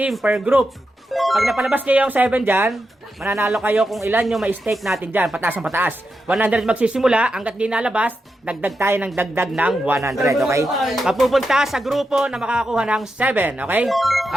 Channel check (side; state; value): both; normal; correlation 0.87